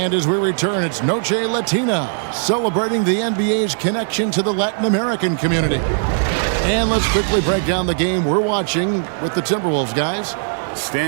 as we return, it's Noche Latina, celebrating the NBA's connection to the Latin American community. And let's quickly break down the game we're watching with the Timberwolves, guys.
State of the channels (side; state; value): left; silent; digital silence